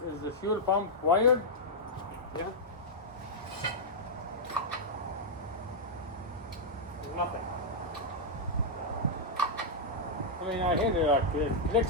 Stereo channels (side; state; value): both; normal; correlation -0.06